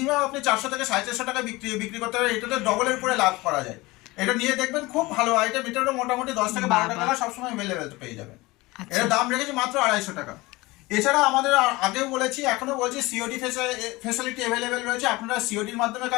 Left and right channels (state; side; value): quieter; right; 21.5 dB